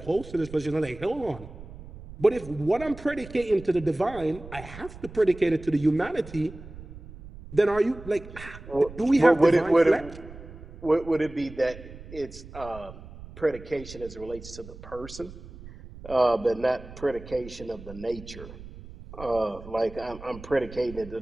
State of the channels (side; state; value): right; noise; rumble, 15 dB below the sound